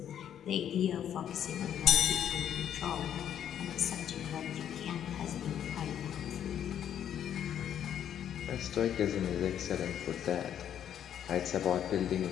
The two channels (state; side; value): quieter; right; 9.8 dB